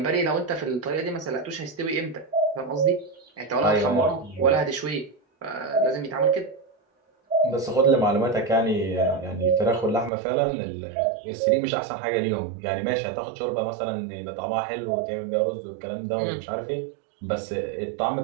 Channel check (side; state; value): left; drops out; at 10.1 s